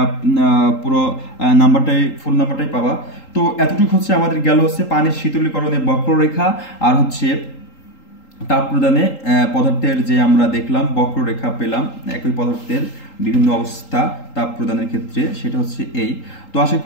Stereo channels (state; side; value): late; right; 3.8 ms